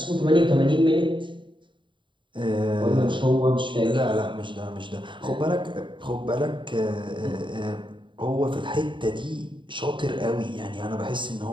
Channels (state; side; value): late; left; 0.23 ms